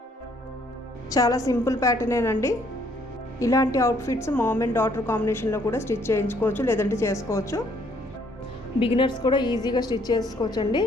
చాలా సింపుల్ ప్యాటర్నేనండి. ఇలాంటి అవుట్ఫిట్స్ మామ్ అండ్ డాటర్ కాంబినేషన్లో కూడా స్టిచ్ చేయించుకోవచ్చు, లేదంటే చేసుకోవచ్చు. బిగినర్స్ కూడా ఈజీగా స్టిచ్ చేసుకోవచ్చండి.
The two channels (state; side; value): normal; both; correlation 0.65